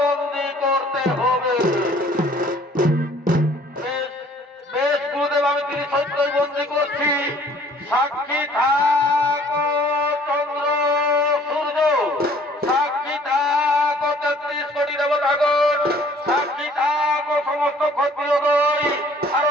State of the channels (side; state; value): both; normal; correlation 0.56